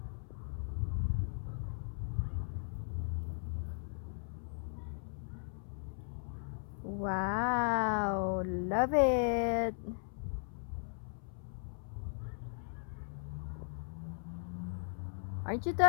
Wow, love it. Aren't you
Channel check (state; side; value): silent; right; 52 dB below the other